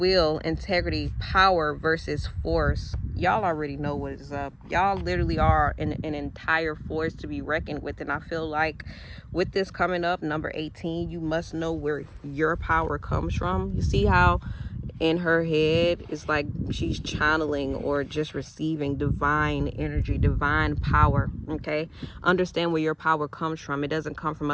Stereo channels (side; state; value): both; identical; correlation 1.00